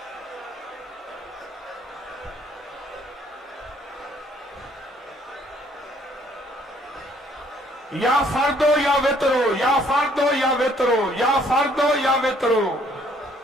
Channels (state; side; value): normal; both; correlation 0.63